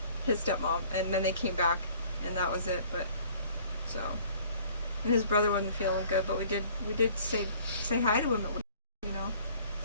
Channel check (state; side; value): inverted; both; correlation -0.54